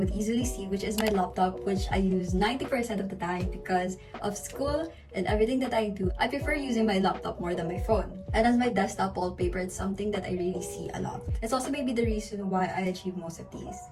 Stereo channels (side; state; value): both; identical; correlation 1.00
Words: easily see, which is my laptop, which I use 90% of the time because of school and everything that I do. I prefer using my laptop more than my phone. And as my desktop wallpaper, it's something that I really see a lot. It's also maybe the reason why I achieve most of these.